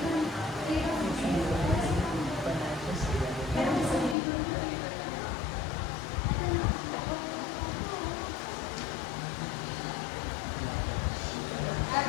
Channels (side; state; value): right; drops out; at 4.2 s